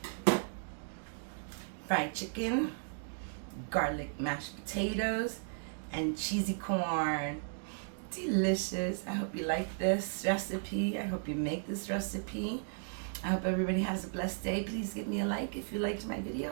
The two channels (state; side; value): silent; left; digital silence